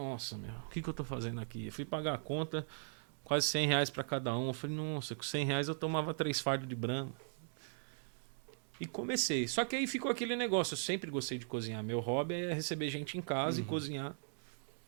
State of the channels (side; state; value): left; silent; 52 dB below the other